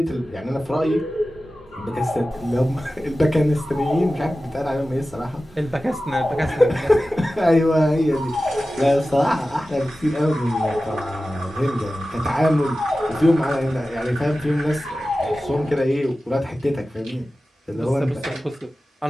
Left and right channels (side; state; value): both; normal; correlation 0.95